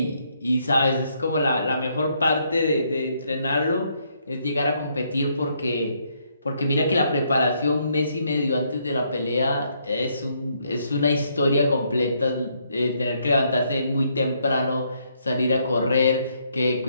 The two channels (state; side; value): inverted; both; correlation -0.73